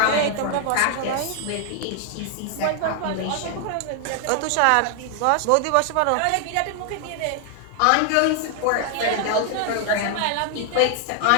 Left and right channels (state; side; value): different; both; correlation 0.00